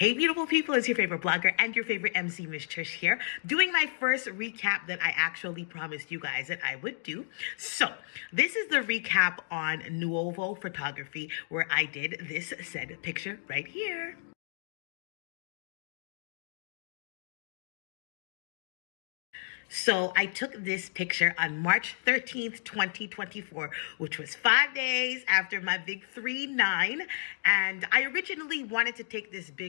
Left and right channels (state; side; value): silent; right; digital silence